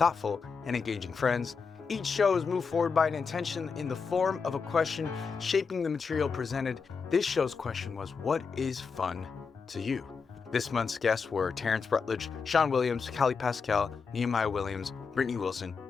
and engaging friends. Each show is moved forward by an intention in the form of a question shaping the material presented. This show's question was, what is fun to you? This month's guests were Terrence Rutledge, Shon Williams, Kalle Pascal, Nehemiah Williams, Brittany Wilson,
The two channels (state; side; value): quieter; right; 5.4 dB